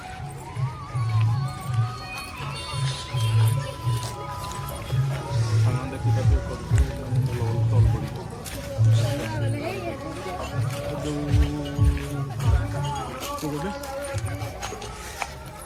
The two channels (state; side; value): identical; both; correlation 1.00